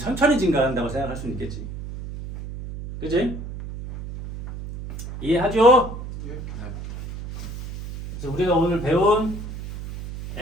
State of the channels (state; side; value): noise; right; hum, 9 dB below the sound